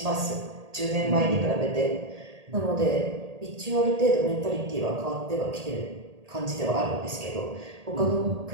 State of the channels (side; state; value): left; late; 1.8 ms